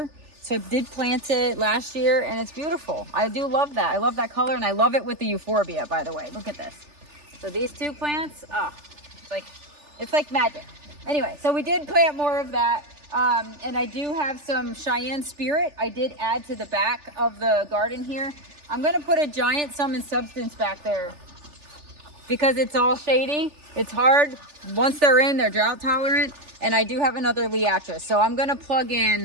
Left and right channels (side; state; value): left; late; 3.4 ms